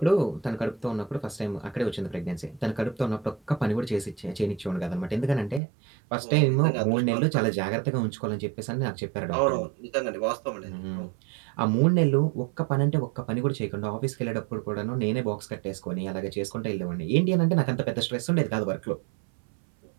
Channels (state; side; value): drops out; left; at 5.6 s